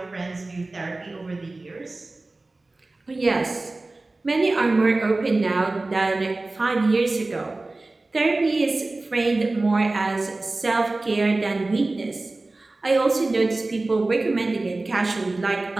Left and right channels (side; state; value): left; quieter; 3.1 dB